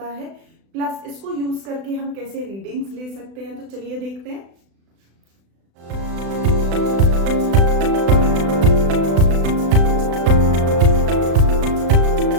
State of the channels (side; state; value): left; late; 36 ms